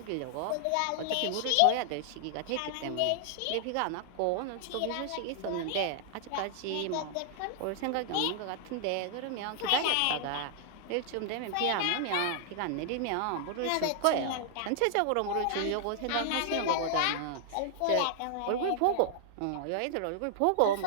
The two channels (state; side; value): different; both; correlation 0.00